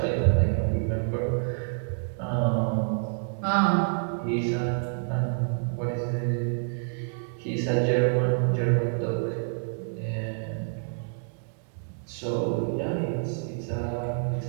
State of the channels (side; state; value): left; silent; digital silence